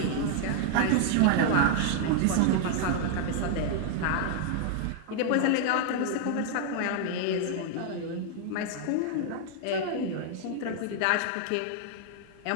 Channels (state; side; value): different; both; correlation 0.00